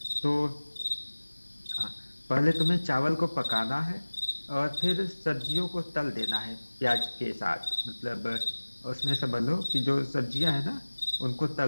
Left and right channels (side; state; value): both; inverted; correlation -1.00